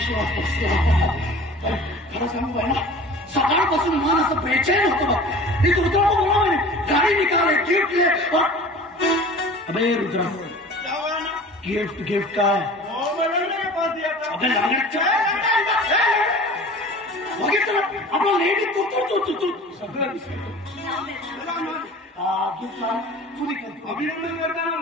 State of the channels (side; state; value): both; normal; correlation 0.42